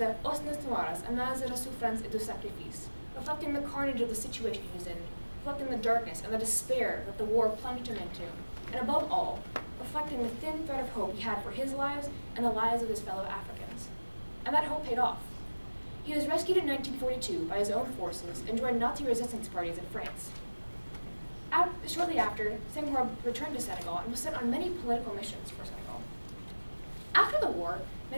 Os Noires, Annales de la Souffrance et du Sacrifice, reflecting the carnage of the situation he was in, reflecting the darkness and the despair that the war plunged him into, and above all, reflecting the thin thread of hope he had for his lives and the lives of his fellow Africans. And that hope paid off. He was rescued in 1942 by his own forces and joined Nazi resistance parties in France. Shortly after, Senghor returned to Senegal and was sent on many political missions for Senegal. After the war,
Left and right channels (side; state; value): both; inverted; correlation -1.00